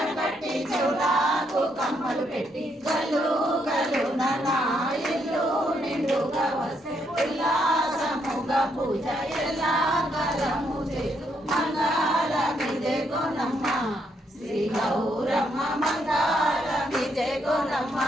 కట్టి చెవులకు కమ్మలు పెట్టి గల్లు గల్లు నా ఇల్లు నిండుగా వస్తే ఉల్లాసముగా పూజ ఎలా కాలము చేతు మంగళమిదే గోనమ్మ శ్రీ గౌరమ్మ మంగళమిదే గోనమ్మ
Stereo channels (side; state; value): both; normal; correlation 0.75